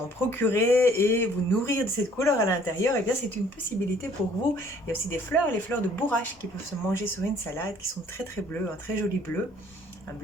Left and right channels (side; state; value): both; normal; correlation 0.58